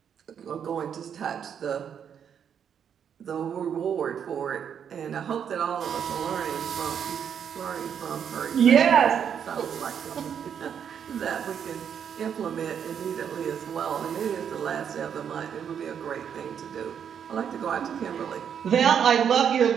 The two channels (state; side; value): quieter; left; 8.1 dB